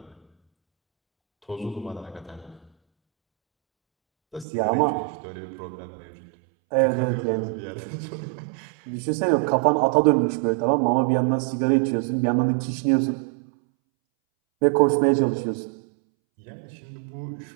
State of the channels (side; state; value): left; drops out; at 4.5 s